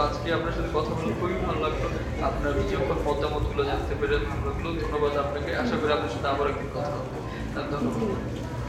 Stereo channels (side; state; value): both; identical; correlation 1.00